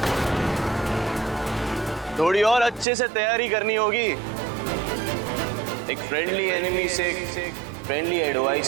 थोड़ी और अच्छे से तैयारी करनी होगी। एक फ्रेंडली एनिमी से फ्रेंडली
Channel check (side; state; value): left; drops out; at 2.9 s